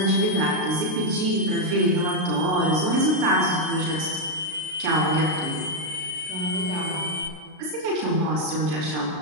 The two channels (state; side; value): late; left; 33 ms